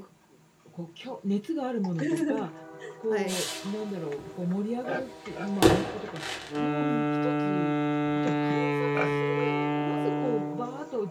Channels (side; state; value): both; identical; correlation 1.00